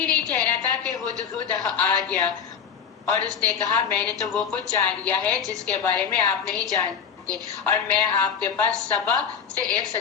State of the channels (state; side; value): quieter; right; 7.2 dB